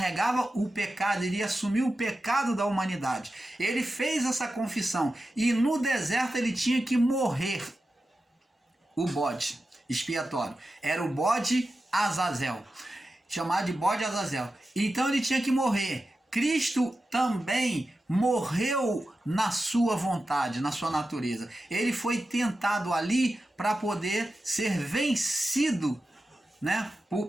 o pecado, iria assumir o pecado da humanidade. Ele fez essa confissão e no deserto ele tinha que morrer. O bode expiatório era o bode Azazel. chamado de bode Azazel. Então ele tinha que morrer. Cristo também morreu na sua vontade, na sua natureza. Ele foi tentado ali para poder ser vencido, né,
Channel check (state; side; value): normal; both; correlation 0.92